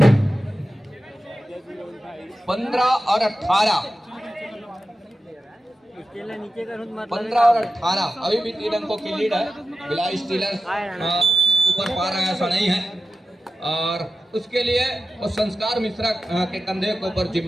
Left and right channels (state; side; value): normal; both; correlation 0.93